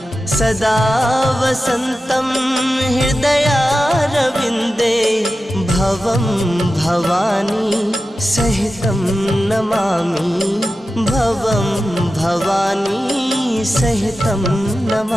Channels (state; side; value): normal; both; correlation 0.93